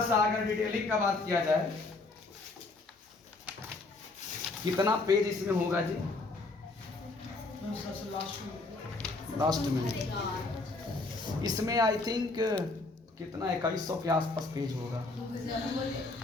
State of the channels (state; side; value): quieter; right; 3.4 dB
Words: सा अगर डिटेलिंग का बात किया जाए, कितना पेज इसमें होगा जी? लास्ट में इसमें आई थिंक कितना 2100 के आसपास पेज होगा,